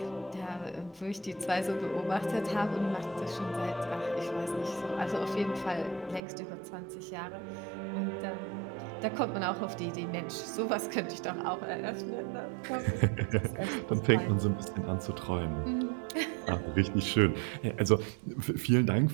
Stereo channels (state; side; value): drops out; left; at 6.2 s